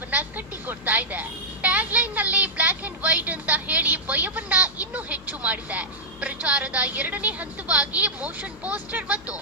ಕಟ್ಟಿಕೊಡ್ತಾ ಇದೆ. ಟ್ಯಾಗ್ಲೈನ್ ನಲ್ಲಿ ಬ್ಲಾಕ್ ಅಂಡ್ ವೈಟ್ ಅಂತ ಹೇಳಿ ಭಯವನ್ನ ಇನ್ನೂ ಹೆಚ್ಚು ಮಾಡಿದೆ. ಪ್ರಚಾರದ ಎರಡನೇ ಹಂತವಾಗಿ ಮೋಷನ್ ಪೋಸ್ಟರ್ ಮತ್ತು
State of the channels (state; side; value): noise; left; hum, 22 dB below the sound